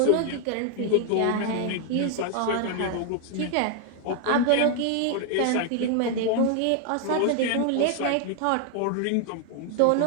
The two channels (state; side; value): different; both; correlation 0.00